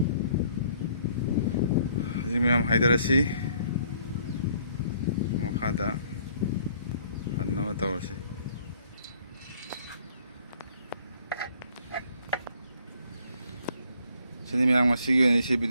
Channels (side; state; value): both; inverted; correlation -0.62